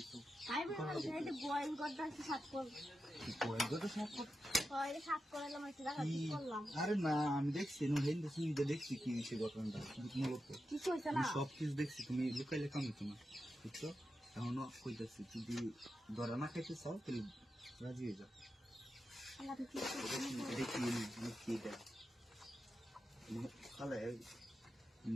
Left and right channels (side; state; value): both; normal; correlation 0.89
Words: তো তাই বললাম যে বয়েল করতে একটু সাত কর। কি করে গো তো সব কর হয় সাত করলাম একটু দেখা কি করলাম। আরে না আমি দেখছি নো হেন দেখছি দেখছি কি হইছে ঘটনাটা তুমি বলতো কিছু হইছে না। আমি সব কিছু দেখছি তুমি লুকাইলে কাম হতো না বুঝছো এখনো কইতাছি যদি ধরা না খাইতে চাও তাহলে রাজি হয়ে যাও আল্লাহ কি দেখি কি এটা খালে